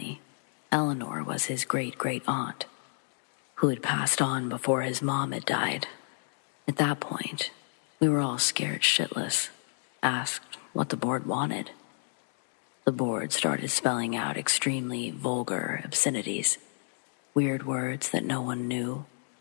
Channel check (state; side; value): silent; right; digital silence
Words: Eleanor was his great-great-aunt, who had passed on before his mom had died. At that point, we were all scared shitless, asked what the board wanted. The board started spelling out extremely vulgar obscenities, weird words that no one knew.